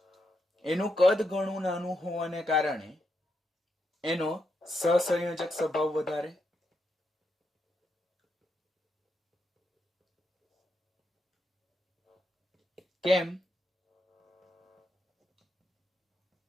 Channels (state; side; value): normal; both; correlation 0.82